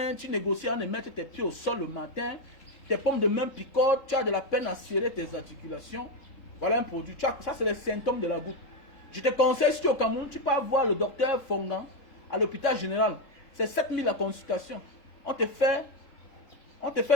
tu négocies à ne mettre tes pieds au sol le matin, tes paumes de main picotent, tu as de la peine à serrer tes articulations. Voilà un produit. Ça, c'est les symptômes de la goutte. Je te conseille, si tu es au Cameroun, tu peux voir le docteur Fongan à l'hôpital général. C'est 7 000 la consultation. On te fait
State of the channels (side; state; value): right; late; 3.8 ms